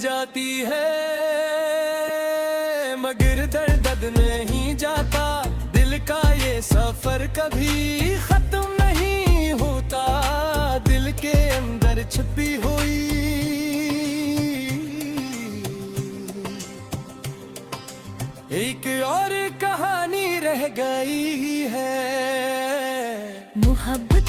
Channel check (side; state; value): both; identical; correlation 1.00